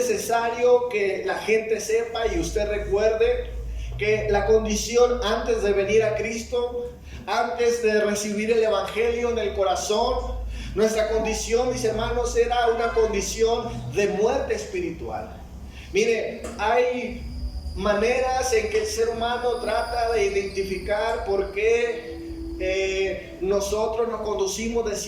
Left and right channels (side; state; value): both; identical; correlation 1.00